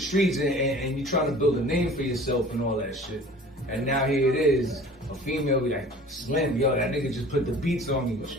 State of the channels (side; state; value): both; normal; correlation 0.45